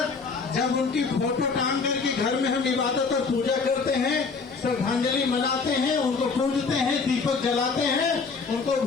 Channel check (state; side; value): quieter; right; 4.8 dB